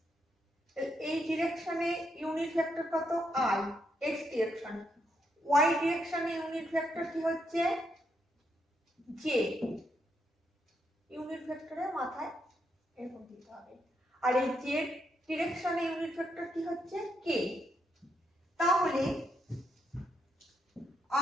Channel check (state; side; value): normal; both; correlation 0.78